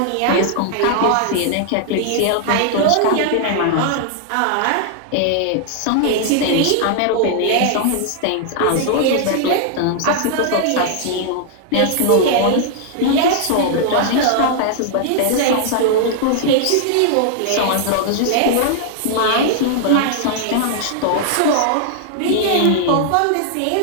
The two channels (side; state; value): both; different; correlation -0.01